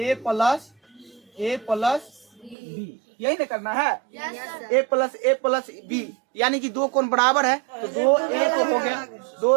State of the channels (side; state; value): left; drops out; at 2.6 s